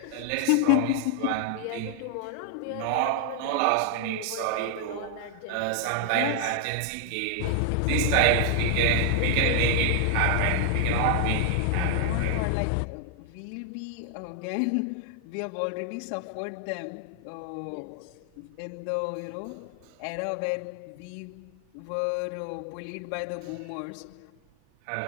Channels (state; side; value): different; both; correlation 0.00